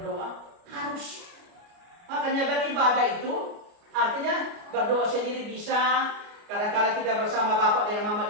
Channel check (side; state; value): left; late; 29 ms